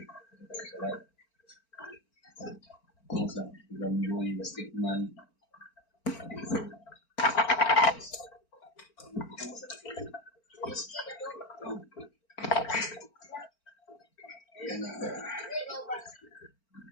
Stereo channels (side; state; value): right; late; 4.4 ms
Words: Kung sa Gamboy, Basketman. Yan na.